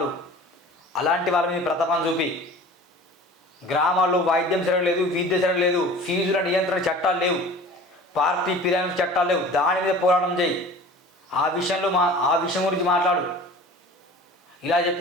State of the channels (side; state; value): both; normal; correlation 0.42